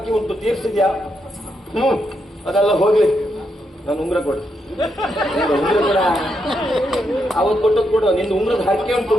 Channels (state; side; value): normal; both; correlation 0.81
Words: ಉಂಟು, ತೀರ್ಸಿದ್ಯಾ? ಅದೆಲ್ಲ ಹೋಗ್ಲಿ. ನಾನು ಉಂಗ್ರ ಕೊಡು. ಉಂಗ್ರ ಕೊಡ, ಅವತ್ತು ಕೊಟ್ಟದ್ ಕೊಡು. ನಿಂದು ಉಂಗ್ರದ ಹರಕೆ ಉಂಟು